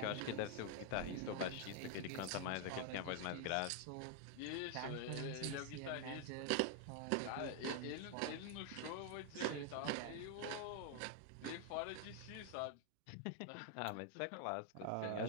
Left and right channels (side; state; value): both; different; correlation 0.00